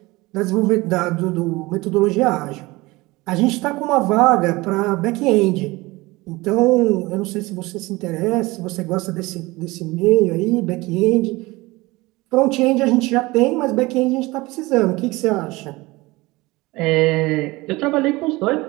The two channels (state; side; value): quieter; left; 21.5 dB